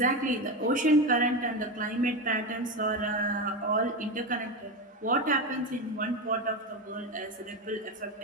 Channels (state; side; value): normal; both; correlation 0.17